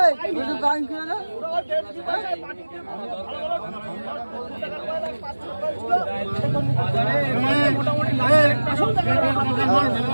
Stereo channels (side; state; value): both; inverted; correlation -1.00